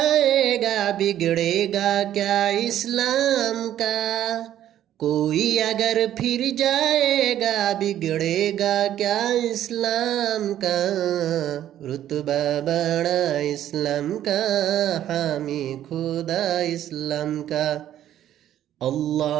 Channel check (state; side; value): quieter; left; 11.7 dB